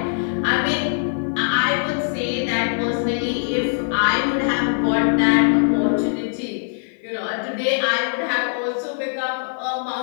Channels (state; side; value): silent; right; 65 dB below the other